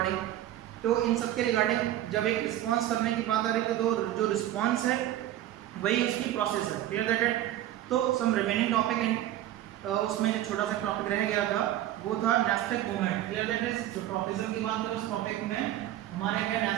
तो इन सब के रिगार्डिंग जब एक रिस्पॉन्स करने की बात आ रही थी तो जो रिस्पॉन्स है वही उसकी प्रोसेस है। Clear that it. तो सम रिमेनिंग टॉपिक उसमें जो छोटा सा टॉपिक रह गया था वो था nastic movement. Clear that is. जो ट्रॉपिज्म की बात करें उस टॉपिक में हमारे क्या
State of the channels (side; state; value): left; quieter; 13.2 dB